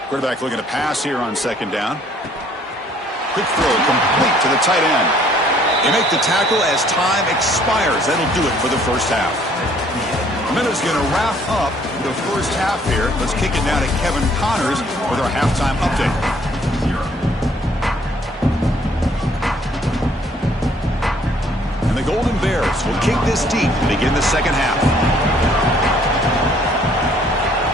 Quarterback looking to pass here on 2nd down. Quick throw complete to the tight end. They make the tackle as time expires. That'll do it for the first half. Minute's going to wrap up the first half here. Let's kick it down to Kevin Connors with our halftime update. And the Golden Bears will kick this deep to begin the second half.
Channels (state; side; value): normal; both; correlation 0.61